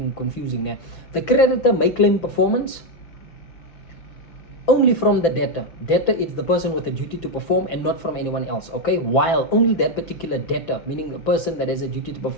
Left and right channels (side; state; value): right; late; 6.0 ms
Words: confusing now. The creditor may claim performance only from the debtor. Debtor is the person with a duty to perform and not from anyone else, okay, while only that particular debtor, meaning the person that has a duty to